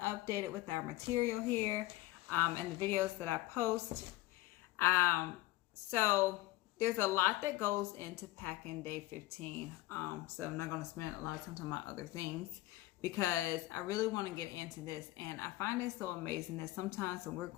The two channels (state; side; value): quieter; right; 18.0 dB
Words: with our material here and the videos that I post. So there's a lot that goes into packing day 15. So I'm not going to spend a lot of time talking about other things because I really want to get into this. And I find it so amazing that sometimes when we're